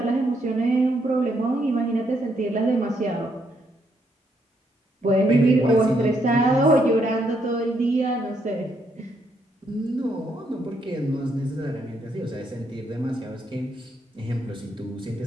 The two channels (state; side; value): normal; both; correlation 0.75